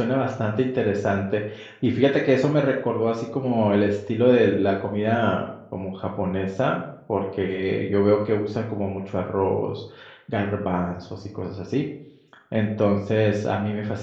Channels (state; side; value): identical; both; correlation 1.00